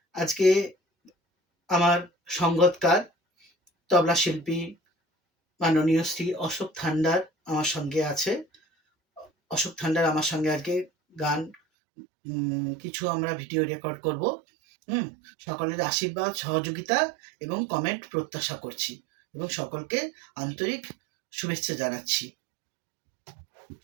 আজকে আমার সঙ্গতকার তবলা শিল্পী মাননীয় শ্রী অশোক থান্ডার আমার সঙ্গে আছে। অশোক থান্ডার আমার সঙ্গে আজকে গান কিছু আমরা ভিডিও রেকর্ড করব। সকলের আশীর্বাদ, সহযোগিতা এবং কমেন্ট প্রত্যাশা করছি এবং সকলকে আন্তরিক শুভেচ্ছা জানাচ্ছি।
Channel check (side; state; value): left; drops out; at 11.6 s